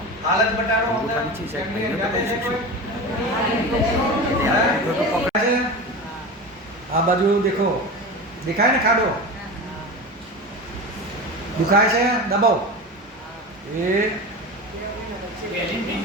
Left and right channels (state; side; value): normal; both; correlation 0.28